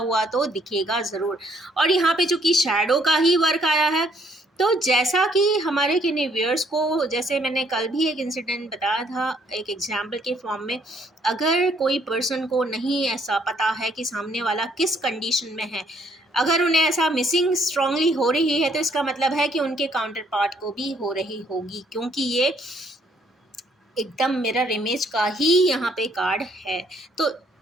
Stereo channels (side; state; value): both; normal; correlation 0.67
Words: तो दिखेगा ज़रूर। और यहाँ पे जो कि शैडो का ही वर्क आया है, तो जैसा कि हमारे किन्हीं व्यूअर्स को, जैसे मैंने कल भी एक इंसिडेंट बताया था एक एग्जाम्पल के फॉर्म में, अगर कोई पर्सन को नहीं ऐसा पता है कि सामने वाला किस कंडीशन में है, अगर उन्हें ऐसा मिसिंग स्ट्रांगली हो रही है, तो इसका मतलब है कि उनके काउंटर पार्ट को भी हो रही होगी, क्योंकि ये एकदम मिरर इमेज का ही यहाँ पे कार्ड है। तो